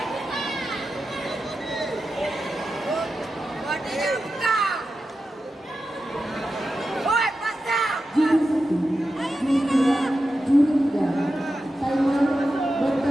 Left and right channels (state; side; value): normal; both; correlation 0.91